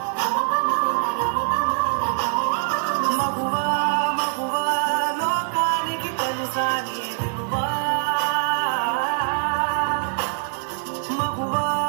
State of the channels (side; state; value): left; silent; digital silence